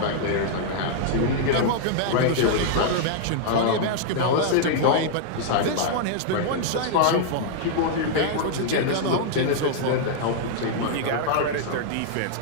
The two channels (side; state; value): both; different; correlation -0.01